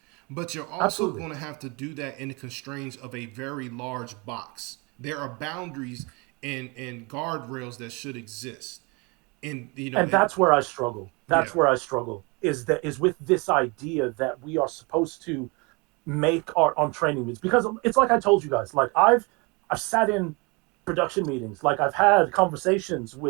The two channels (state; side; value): quieter; left; 28.9 dB